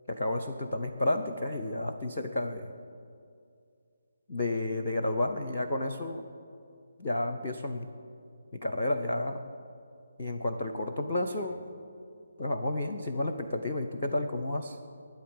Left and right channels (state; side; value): inverted; both; correlation -0.83